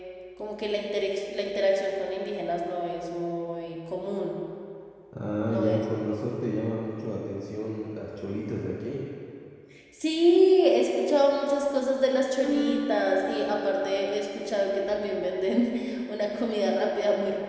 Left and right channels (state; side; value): identical; both; correlation 1.00